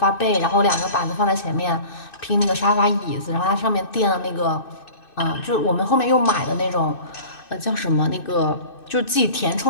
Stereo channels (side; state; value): right; late; 2.6 ms